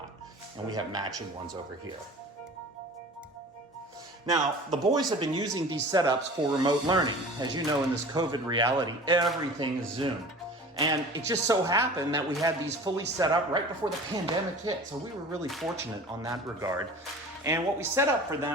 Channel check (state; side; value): normal; both; correlation 0.40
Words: And we have matching ones over here. Now, the boys have been using these setups for remote learning. As you know, in this COVID reality, everything is Zoom. And it just so happened that we had these fully set up right before the pandemic hit. So we were really fortunate on that regard. And what we set up for